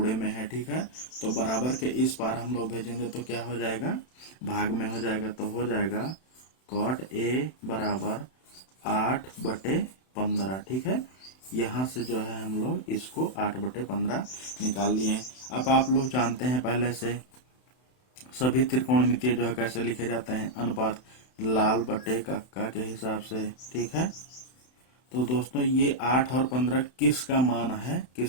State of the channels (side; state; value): right; late; 31 ms